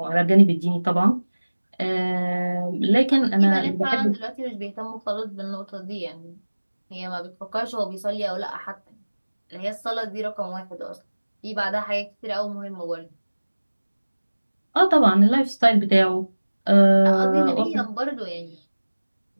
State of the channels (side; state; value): both; inverted; correlation -1.00